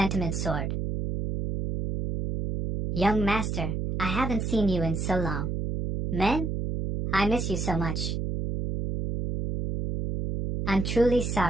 Sword. Young Master, I haven't seen you in so long. Men? I miss you so much. I'm truly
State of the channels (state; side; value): noise; right; hum, 2 dB below the sound